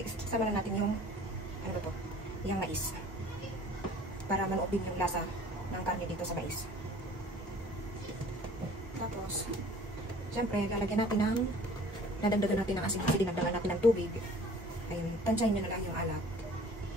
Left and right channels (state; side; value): normal; both; correlation 0.49